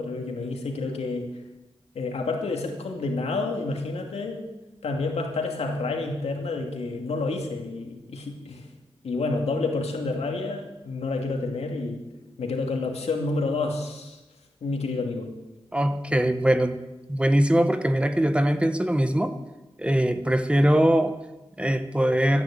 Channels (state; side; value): normal; both; correlation 0.87